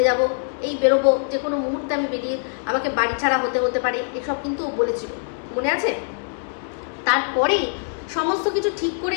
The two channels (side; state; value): right; silent; digital silence